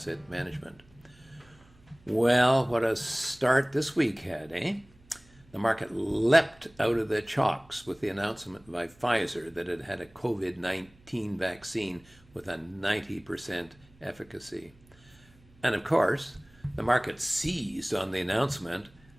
Management. Well, what a start this week had, eh? The market leapt out of the chalks with the announcement by Pfizer that it had a COVID-19 vaccine with a 90% efficacy. And of course, the market seized on the announcement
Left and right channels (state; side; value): noise; right; hum, 28 dB below the sound